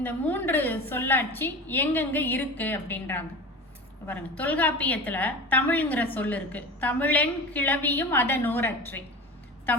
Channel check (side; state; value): both; normal; correlation 0.32